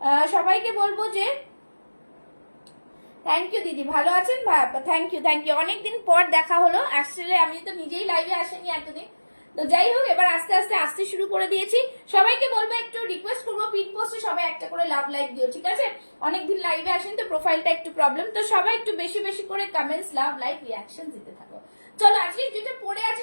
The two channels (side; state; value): both; inverted; correlation -1.00